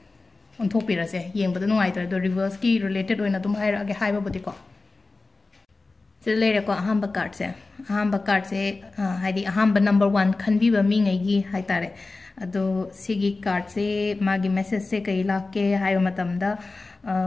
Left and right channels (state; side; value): quieter; right; 3.5 dB